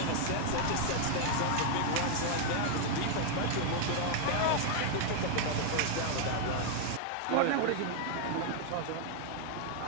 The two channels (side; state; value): both; different; correlation 0.00